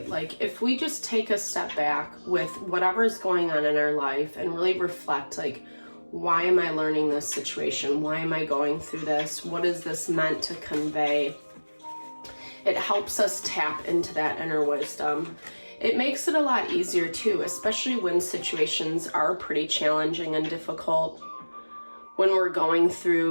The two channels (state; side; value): inverted; both; correlation -1.00